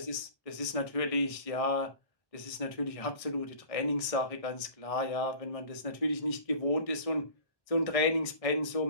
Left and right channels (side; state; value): right; late; 1.6 ms